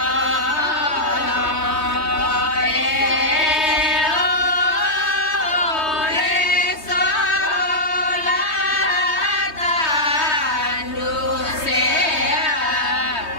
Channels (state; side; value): late; right; 3.2 ms